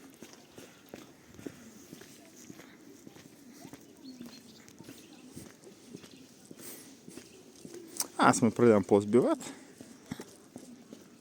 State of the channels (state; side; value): identical; both; correlation 1.00